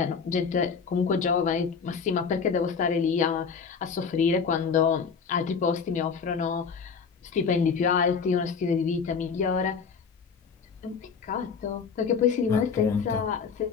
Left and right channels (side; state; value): right; quieter; 5.9 dB